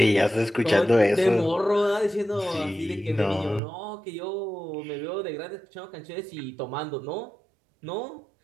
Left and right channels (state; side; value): drops out; left; at 3.6 s